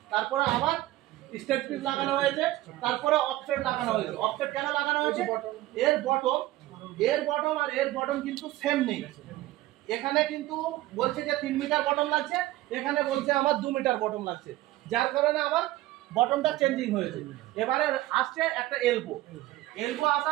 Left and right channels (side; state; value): left; quieter; 16.4 dB